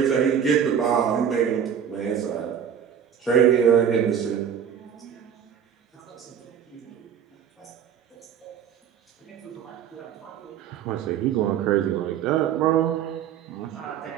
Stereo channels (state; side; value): quieter; left; 8.4 dB